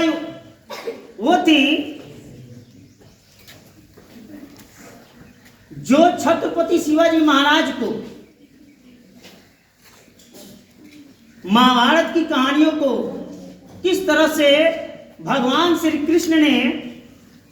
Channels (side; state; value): both; identical; correlation 1.00